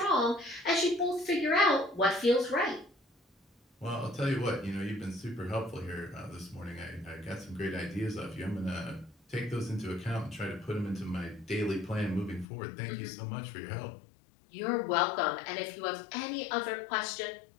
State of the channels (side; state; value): right; drops out; at 12.5 s